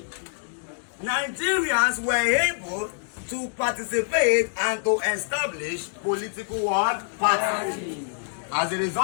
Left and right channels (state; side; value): silent; right; digital silence